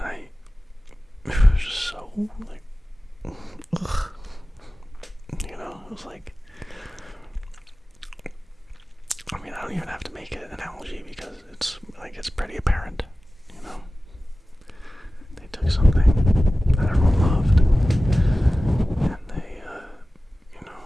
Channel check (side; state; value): both; normal; correlation 0.96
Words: it was just so, like, ugh. You know, it was like, I mean, I don't even have to make an analogy because it's pretty apparent, you know? They took something that everyone loved, and